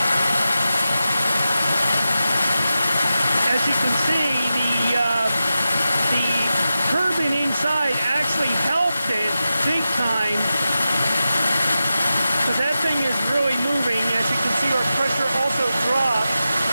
As you can see, the turbine inside actually helped it big time, because that thing is really moving. As you can see, our pressure also dropped.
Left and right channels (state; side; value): inverted; both; correlation -0.92